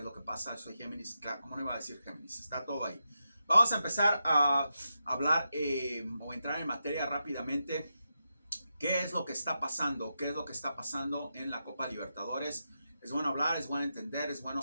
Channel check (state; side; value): inverted; both; correlation -0.87